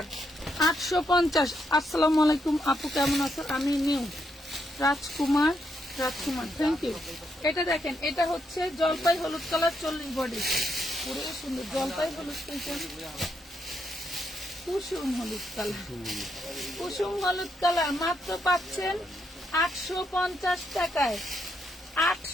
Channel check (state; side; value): normal; both; correlation 0.79